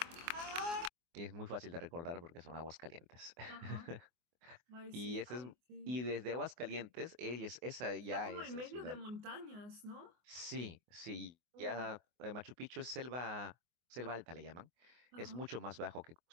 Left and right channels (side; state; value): left; late; 24 ms